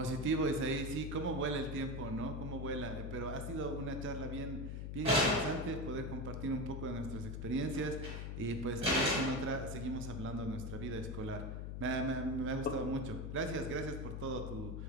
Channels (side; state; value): left; noise; hum, 5 dB below the sound